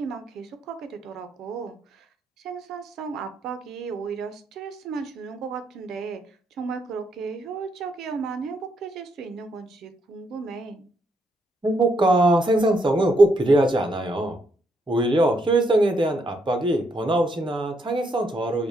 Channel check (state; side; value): normal; both; correlation 0.76